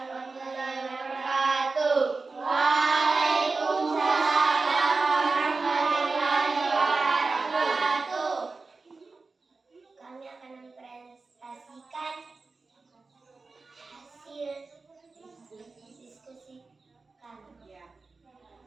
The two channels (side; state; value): left; quieter; 3.9 dB